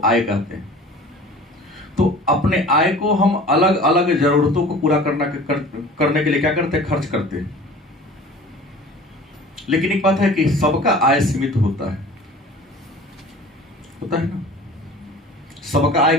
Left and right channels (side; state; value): both; normal; correlation 0.43